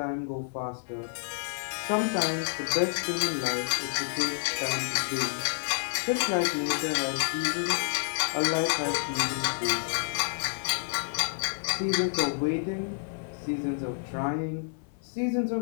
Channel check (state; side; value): silent; right; 58 dB below the other